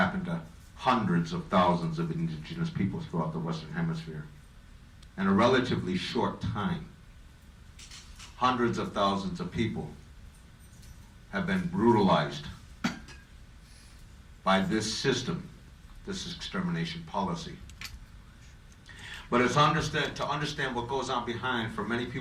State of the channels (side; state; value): both; identical; correlation 1.00